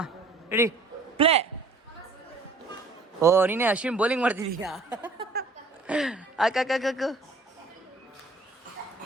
ರೆಡಿ ಪ್ಲೇ. ಓ ನೀನೇ ಅಶ್ವಿನ್ ಬೌಲಿಂಗ್ ಮಾಡ್ತಿದ್ದೀಯಾ? ಹಾಕು.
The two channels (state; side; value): quieter; left; 3.4 dB